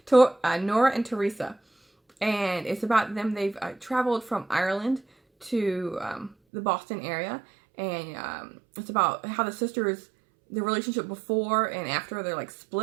Nora and Teresa. And it's about them. They've traveled from Ireland to the Boston area, and it's about how the sisters, the relationship before and after they're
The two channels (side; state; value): left; drops out; at 6.4 s